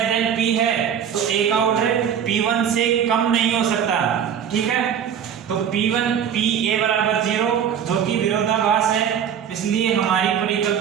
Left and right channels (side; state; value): left; quieter; 8.4 dB